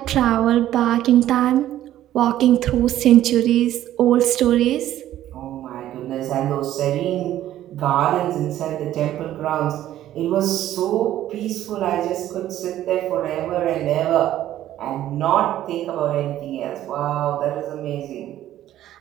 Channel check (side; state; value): left; quieter; 12.8 dB